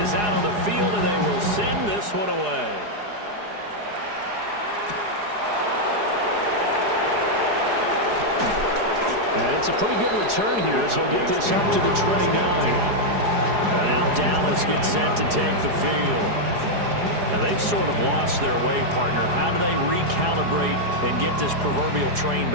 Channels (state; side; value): late; left; 4.8 ms